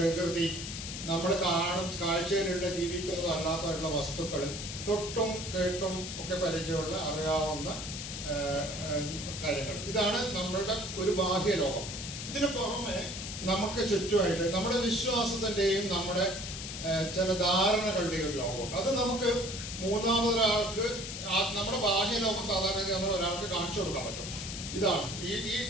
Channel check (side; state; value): left; noise; hiss, 7 dB below the sound